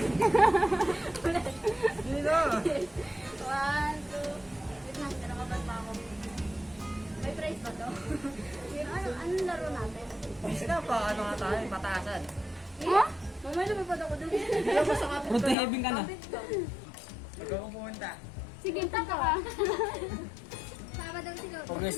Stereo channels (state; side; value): drops out; right; at 15.6 s